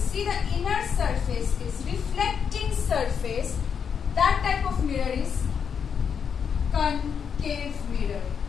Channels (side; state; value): right; quieter; 7.0 dB